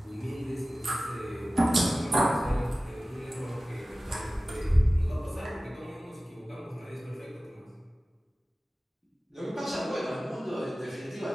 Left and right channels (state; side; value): normal; both; correlation 0.97